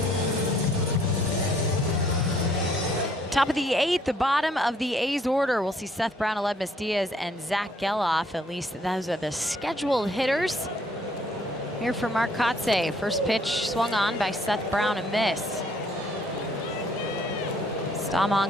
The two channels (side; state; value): both; normal; correlation 0.64